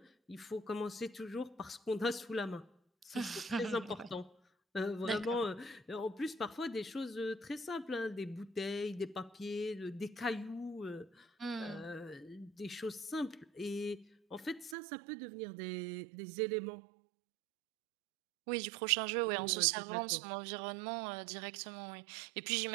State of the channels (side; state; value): left; drops out; at 14.8 s